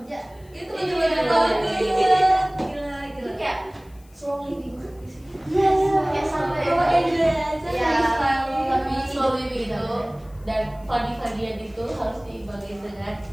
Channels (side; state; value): left; noise; hiss, 30 dB below the sound